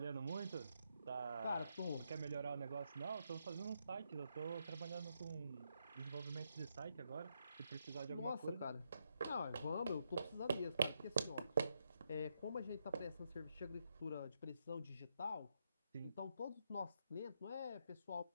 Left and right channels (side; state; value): both; inverted; correlation -0.79